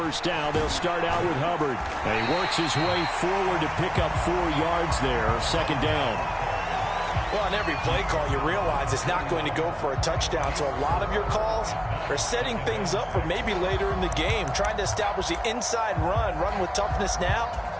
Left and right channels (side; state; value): both; identical; correlation 1.00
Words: down, they'll start out with Hubbard. And he works his way forward to pick up 4 yards there. Second down. Well, on every play call, you realize it's not going to go for a touchdown. So a lot of your calls are setting things up for maybe later in the game, trying to establish the inside run with toughness now,